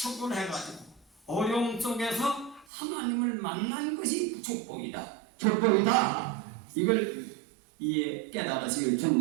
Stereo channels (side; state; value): left; drops out; at 2.7 s